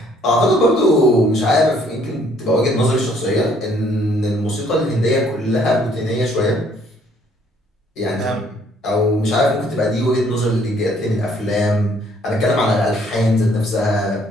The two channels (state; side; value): normal; both; correlation 0.63